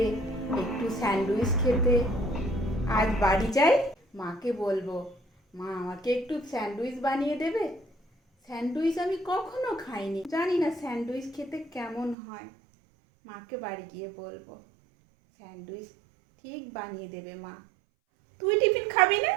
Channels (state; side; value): drops out; left; at 12.2 s